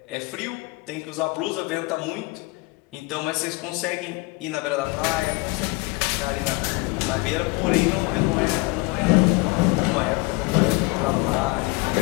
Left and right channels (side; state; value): right; quieter; 25.0 dB